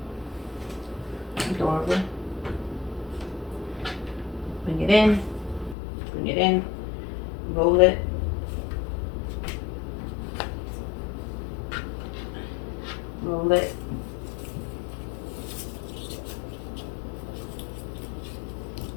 Adorable. Bring it in. Bring it in. Roll it. Roll it.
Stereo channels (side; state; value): right; drops out; at 5.8 s